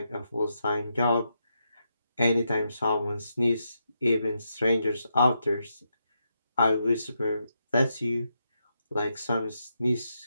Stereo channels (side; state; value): both; inverted; correlation -0.83